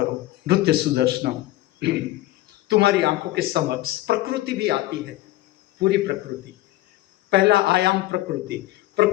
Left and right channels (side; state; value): right; quieter; 16.8 dB